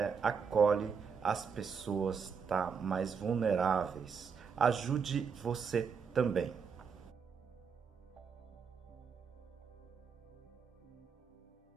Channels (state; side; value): quieter; left; 6.1 dB